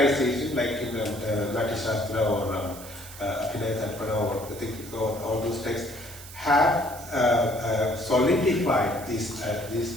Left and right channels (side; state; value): right; noise; hiss, 15 dB below the sound